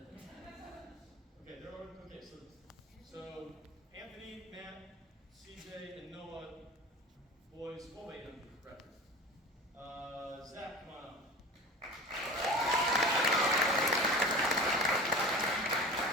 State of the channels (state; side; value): normal; both; correlation 0.35